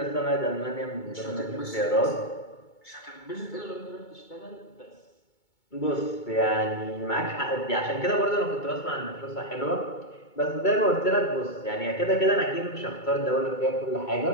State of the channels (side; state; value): right; late; 2.2 ms